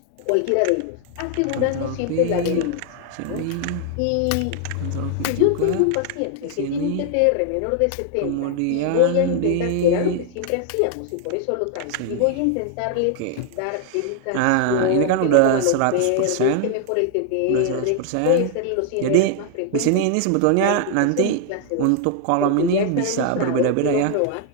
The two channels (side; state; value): both; different; correlation 0.00